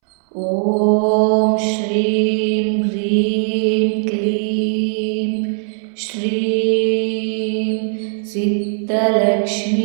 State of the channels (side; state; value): left; silent; 67 dB below the other